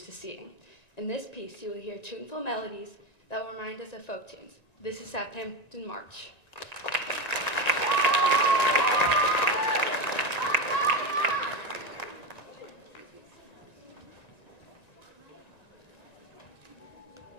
to seeing. In this piece, you will hear tuneful melodies that will remind us of folk tunes. This is Southampton March.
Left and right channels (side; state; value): right; late; 1.9 ms